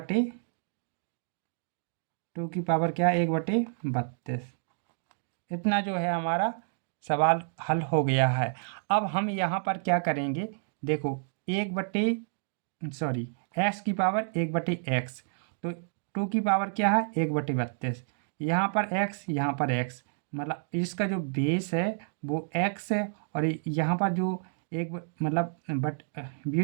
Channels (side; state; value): left; silent; digital silence